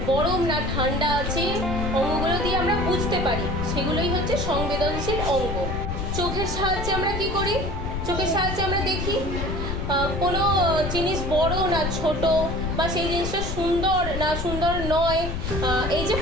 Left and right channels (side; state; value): left; noise; rumble, 4 dB below the sound